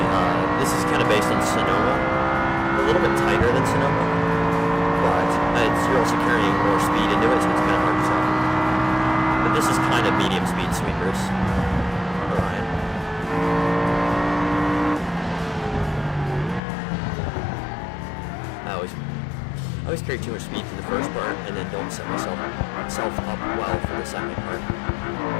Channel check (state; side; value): drops out; right; at 16.6 s